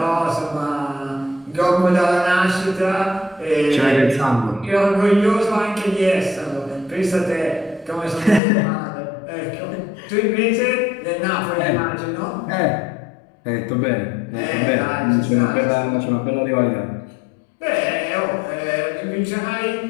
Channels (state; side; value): drops out; right; at 8.4 s